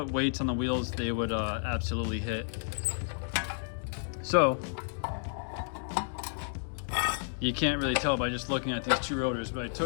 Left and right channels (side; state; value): right; silent; digital silence